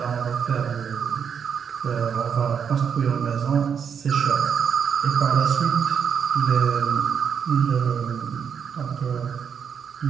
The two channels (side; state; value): left; quieter; 7.2 dB